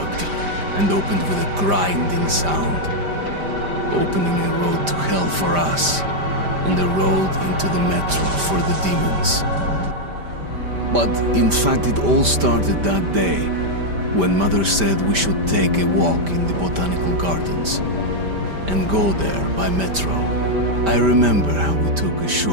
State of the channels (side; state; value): left; late; 5.1 ms